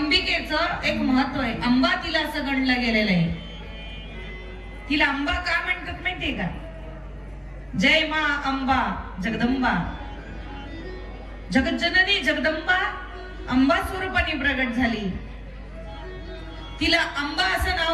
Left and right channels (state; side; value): identical; both; correlation 1.00